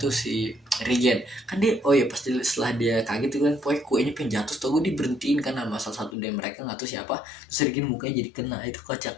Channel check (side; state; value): right; drops out; at 6.2 s